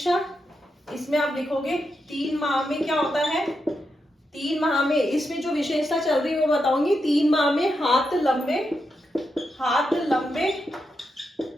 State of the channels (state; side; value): normal; both; correlation 0.85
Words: इसमें आप लिखोगे 3 माह में क्या होता है, 3 माह में इसमें जो विशेषता चल रही है वो बताऊंगी। 3 माह में हाथ लंबे